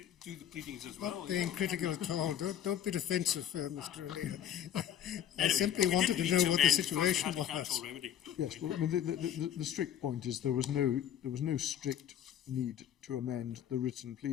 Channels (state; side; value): quieter; right; 10.2 dB